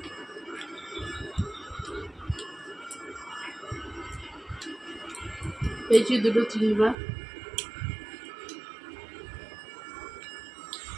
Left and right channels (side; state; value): left; drops out; at 7.0 s